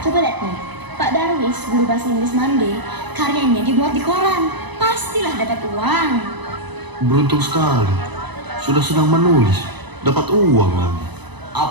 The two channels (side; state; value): left; late; 1.0 ms